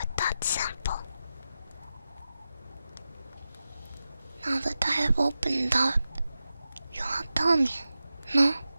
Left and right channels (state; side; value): inverted; both; correlation -0.92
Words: that sample? Now that I have opened up, you won't tell me, no?